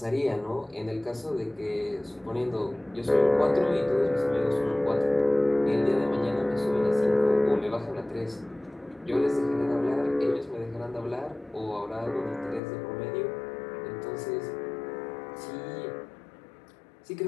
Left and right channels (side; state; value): right; drops out; at 12.6 s